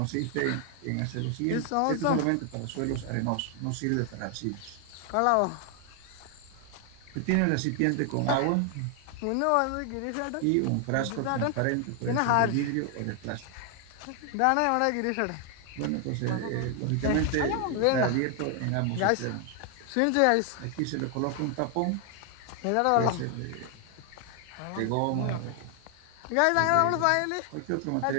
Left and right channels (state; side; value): different; both; correlation 0.00